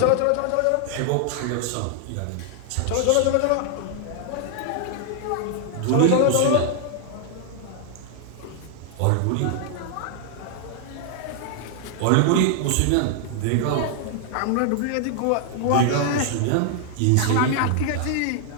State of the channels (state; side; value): different; both; correlation 0.00